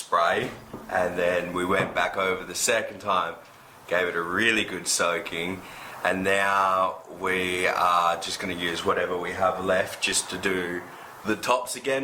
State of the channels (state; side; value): identical; both; correlation 1.00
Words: and then we went back over the second time, gave it a really good soaking, and now we are just going to use whatever we have left just to do the tops